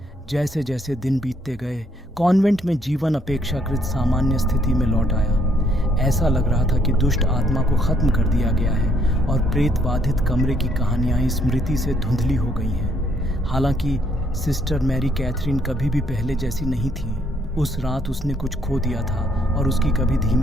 जैसे जैसे दिन बीतते गए, कॉन्वेंट में जीवन अपेक्षाकृत सामान्य स्थिति में लौट आया। ऐसा लग रहा था कि दुष्ट आत्मा को खत्म कर दिया गया है और प्रेत बाधित कमरे की कहानियां स्मृति से धुंधली हो गई हैं। हालांकि सिस्टर मैरी कैथरीन कभी भी पहले जैसी नहीं थी। उस रात उसने कुछ खो दिया था और उसकी कभी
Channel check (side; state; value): both; normal; correlation 0.69